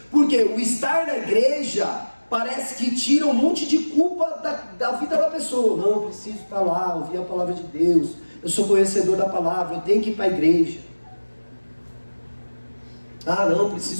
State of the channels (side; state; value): both; inverted; correlation -1.00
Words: porque o estar na igreja parece que tira um monte de culpa da vida da pessoa. Não, eu preciso estar lá, ouvir a palavra de Deus, eu sou conhecedor da palavra, eu tenho que ir para a igreja. Ah, não,